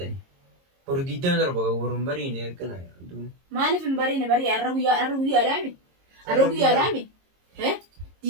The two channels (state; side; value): late; left; 22 ms